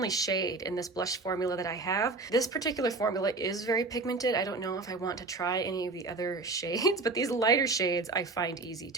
shade in this blush formula that I have. This particular formula is very pigmented. I don't know if I want to try any of the other shades, but these lighter shades I find easy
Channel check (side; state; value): left; quieter; 3.5 dB